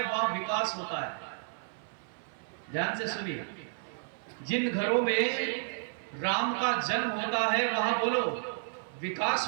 वहां विकास होता है। ध्यान से सुनिए, जिन घरों में राम का जन्म होता है वहां बोलो विकास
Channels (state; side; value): silent; left; 56 dB below the other